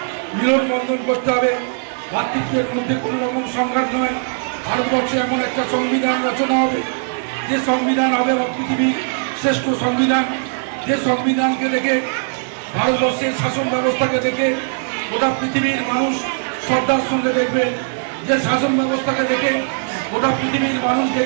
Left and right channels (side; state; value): left; silent; digital silence